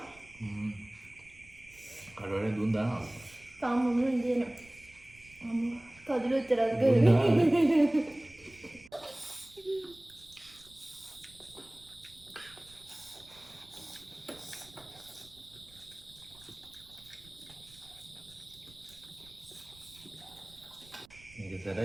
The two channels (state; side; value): noise; right; rumble, 24 dB below the sound